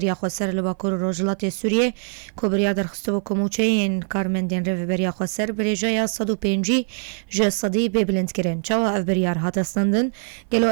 خسر لباکور روجلات سوریه کو بریا در خستو کوموچه این کارمندین رو بریا خسر بریجای 105 ج صدی ببلند کرن چاو اف بریار هاتستندن گلو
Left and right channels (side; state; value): left; silent; 57 dB below the other